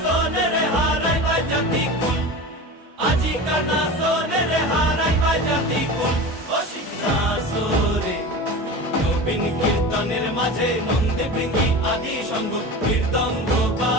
হারাই বাজাতি কুল, আজিকার নাচনের হারাই বাজাতি কুল। ও শিব নাচরে নবীন কীর্তনের মাঝে নন্দী ভৃঙ্গি আদি সঙ্গ মৃদঙ্গ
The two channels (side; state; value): both; normal; correlation 0.31